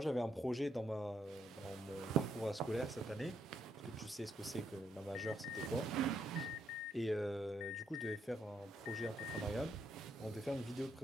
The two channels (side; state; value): both; normal; correlation 0.75